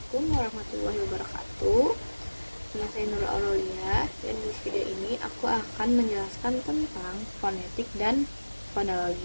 warahmatullahi wabarakatuh. Nama saya Nurul Aurelia, dan di video ini aku akan menjelaskan tentang fonetik dan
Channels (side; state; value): both; inverted; correlation -1.00